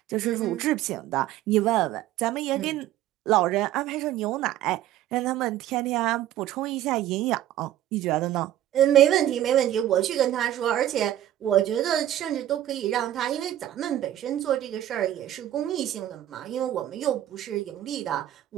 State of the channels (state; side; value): quieter; left; 12.5 dB